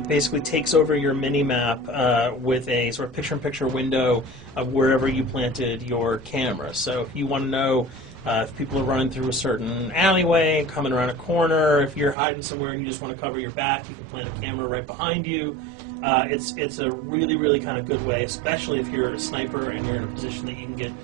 basically takes over your mini-map with a sort of picture-in-picture window of wherever you planted your camera. So if you want to know if people are running through a certain alleyway, coming around a corner, if you're hiding somewhere and you just want to cover your back, you can plant a camera right behind you. It's a really kind of good way, especially if you're a sniper and you're in a position that you can get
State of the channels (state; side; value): drops out; left; at 12.2 s